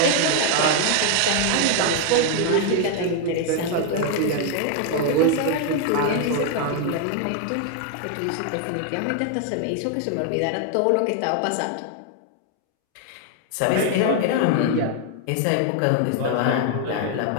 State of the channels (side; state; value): both; different; correlation 0.00